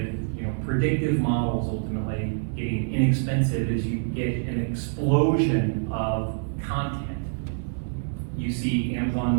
predictive models ultimately getting inexpensive is you get an explosion of content. You see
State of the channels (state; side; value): silent; left; digital silence